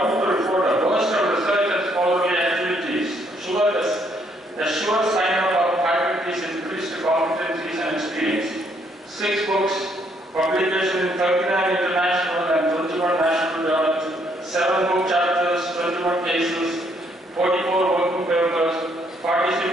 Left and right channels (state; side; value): normal; both; correlation 0.70